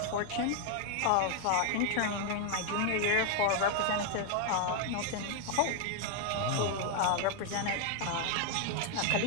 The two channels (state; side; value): different; both; correlation 0.01